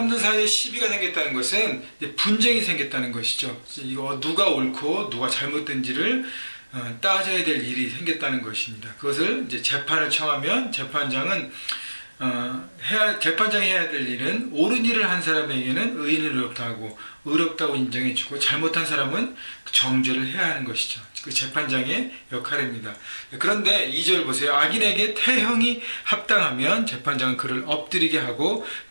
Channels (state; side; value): inverted; both; correlation -1.00